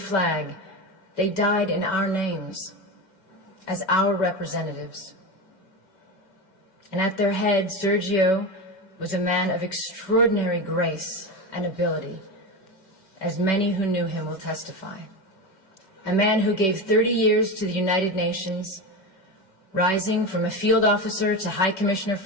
they died in our names, as our representatives. And at their head, Sergio was a man of extraordinary grace and ability, as many who knew him will testify. A man who gave 30 years to the United Nations, rising from a field officer to High Commissioner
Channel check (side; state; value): right; late; 5.2 ms